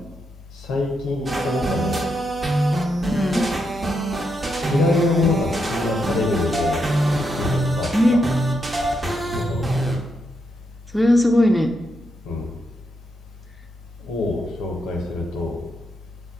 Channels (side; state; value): both; normal; correlation 0.82